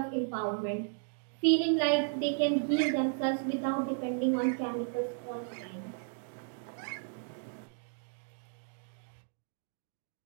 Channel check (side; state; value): left; silent; digital silence